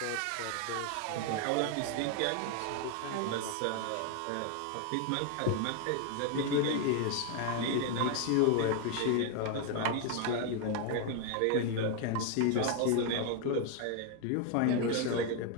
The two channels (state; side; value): different; both; correlation 0.01